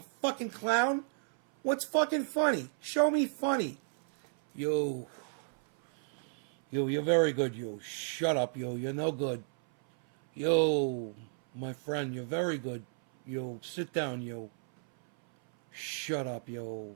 fucking clown? What's fucking funny? Show me funny. Yo, you're very good. Yo, shut up. Yo, you're no good. Yo, my friend, you're very good. Yo, sit down. Yo, shut up. Yo.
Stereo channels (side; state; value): left; silent; 56 dB below the other